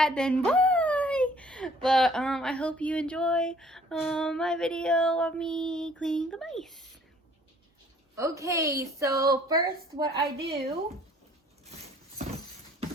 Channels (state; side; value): normal; both; correlation 0.57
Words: then bye. But I hope you enjoy my video of me cleaning the mice. Okay, so first what I do